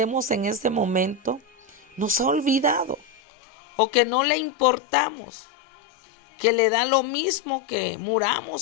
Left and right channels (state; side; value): drops out; right; at 3.1 s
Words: en ese momento, nos ha olvidado o que no le importamos, que le da lo mismo que